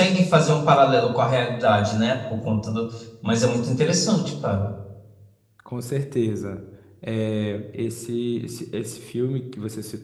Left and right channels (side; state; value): both; identical; correlation 1.00